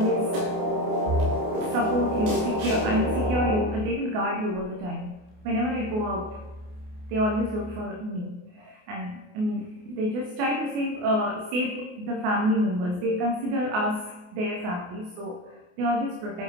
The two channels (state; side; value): late; left; 28 ms